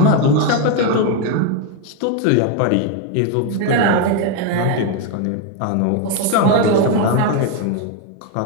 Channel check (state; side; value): different; both; correlation 0.01